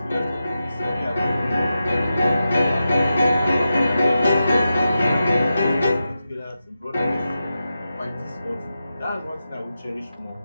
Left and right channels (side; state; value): both; inverted; correlation -0.90